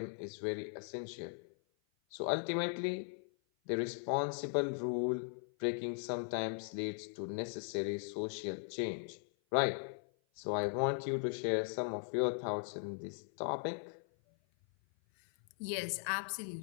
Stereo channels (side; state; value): right; silent; 52 dB below the other